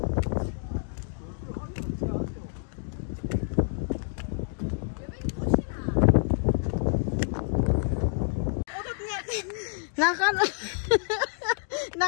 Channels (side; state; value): right; silent; digital silence